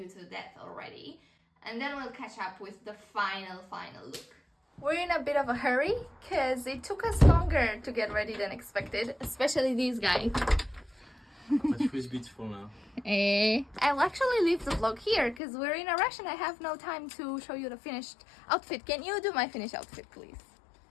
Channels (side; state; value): right; drops out; at 15.4 s